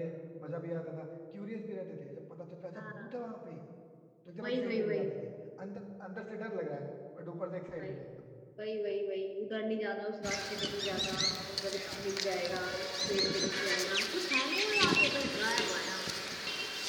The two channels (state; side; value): identical; both; correlation 1.00